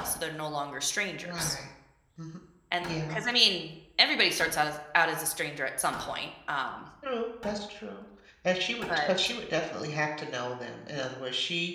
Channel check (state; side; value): identical; both; correlation 1.00